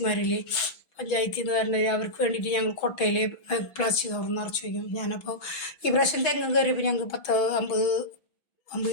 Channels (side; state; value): right; late; 6.1 ms